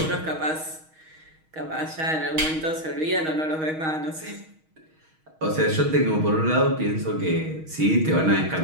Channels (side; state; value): left; late; 6.3 ms